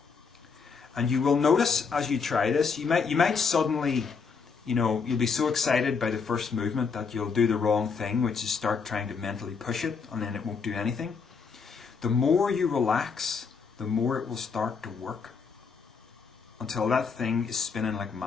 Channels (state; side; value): quieter; right; 5.4 dB